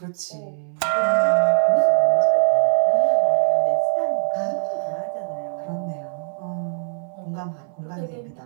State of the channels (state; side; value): silent; left; 64 dB below the other